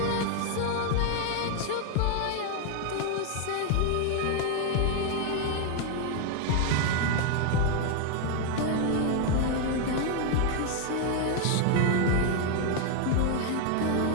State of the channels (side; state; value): both; different; correlation 0.01